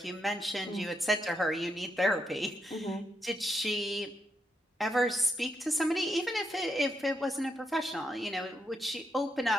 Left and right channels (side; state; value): both; normal; correlation 0.81